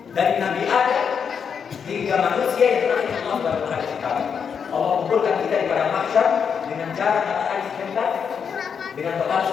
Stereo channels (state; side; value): quieter; right; 6.8 dB